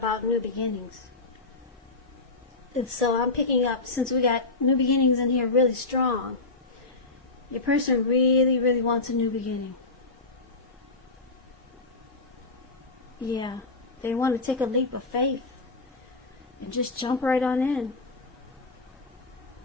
new beginnings. And so I'm picking up, since we got new beginnings in here really strong, your person really, really wants a new beginning. Yeah, they want to take a leap of faith and just jump right on in.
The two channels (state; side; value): quieter; right; 3.3 dB